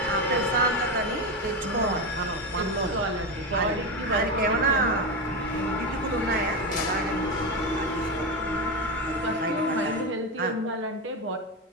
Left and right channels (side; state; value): both; normal; correlation 0.14